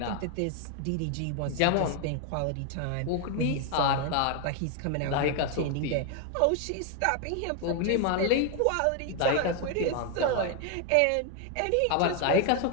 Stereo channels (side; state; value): both; different; correlation 0.01